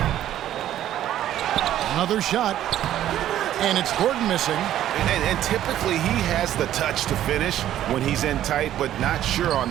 Another shot. And it's Gordon missing. And typically he has the touch to finish when he's in tight, but not sure on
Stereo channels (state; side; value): quieter; left; 12.1 dB